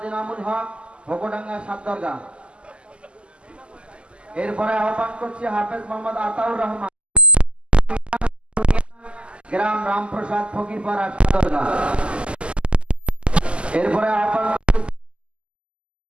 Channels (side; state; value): left; late; 0.052 ms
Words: ইনামুল হক, ভোগডাঙ্গা সাতদরগা। এরপরে আহ্বান করছি হাফেজ মোহাম্মদ আতাউর রহমান, গ্রাম রামপ্রসাদ ফকিরপাড়া সাতদরগা। এরপরে আহ্বান